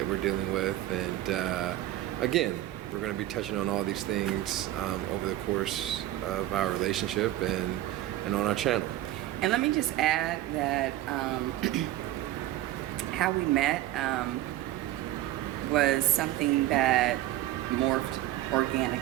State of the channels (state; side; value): quieter; left; 14.3 dB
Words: we're dealing with, and again, we're going to be touching on all these things over the course of our relationship and on our channel. And let me just add that how we met was something that morphed